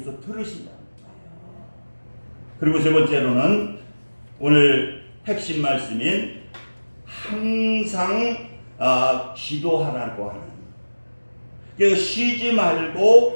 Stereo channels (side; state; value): both; inverted; correlation -1.00